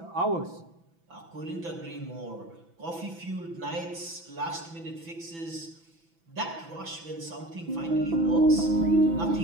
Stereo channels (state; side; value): late; left; 6.0 ms